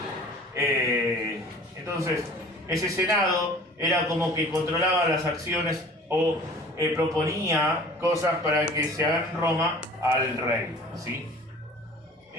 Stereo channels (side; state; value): both; normal; correlation 0.46